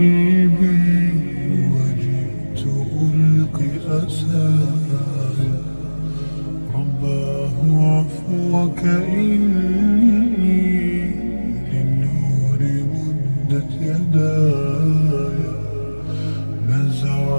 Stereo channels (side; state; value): both; inverted; correlation -1.00